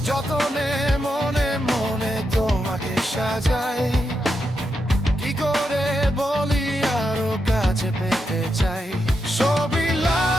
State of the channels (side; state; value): both; normal; correlation 0.85